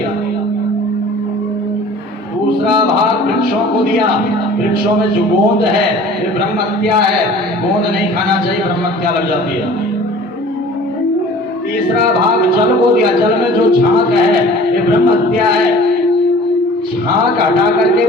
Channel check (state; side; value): normal; both; correlation 0.46